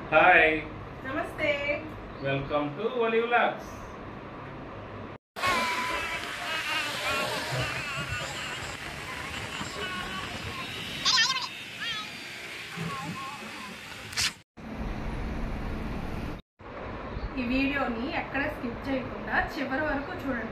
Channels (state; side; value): identical; both; correlation 1.00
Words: Hi, నమస్తే. Welcome to Vali vlogs. ఈ వీడియోని ఎక్కడ స్కిప్ చేయకుండా చివరి వరకు